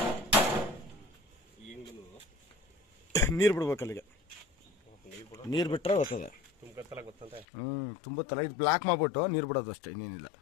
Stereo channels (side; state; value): right; drops out; at 7.5 s